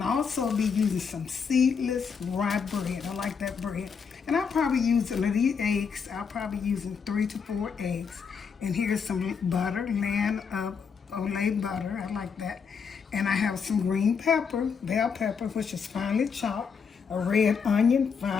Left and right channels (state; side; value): quieter; right; 6.1 dB